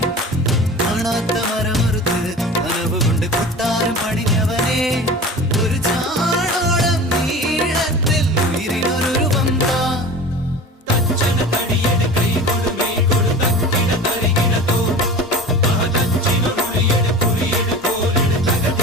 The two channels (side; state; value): both; normal; correlation 0.36